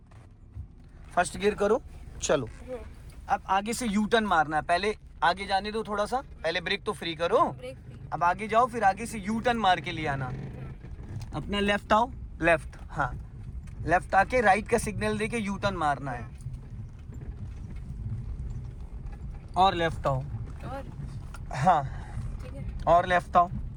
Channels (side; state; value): both; identical; correlation 1.00